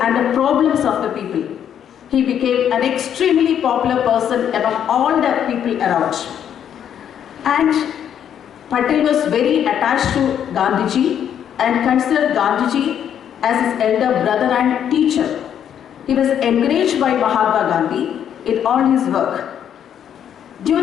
and the problems of the people. He became an extremely popular person among all the people around. And Patel was very attached to Gandhiji and considered Gandhiji as his elder brother and teacher. He was encouraged by Mahatma Gandhi in all his work.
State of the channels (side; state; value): right; quieter; 9.3 dB